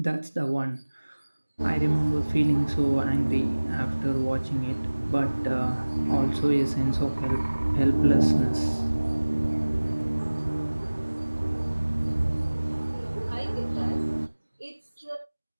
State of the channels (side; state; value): both; inverted; correlation -1.00